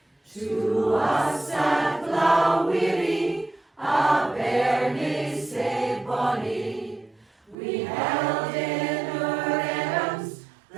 To us at Balweary, a bairnie sae bonny, we held in our arms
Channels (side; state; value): left; drops out; at 7.6 s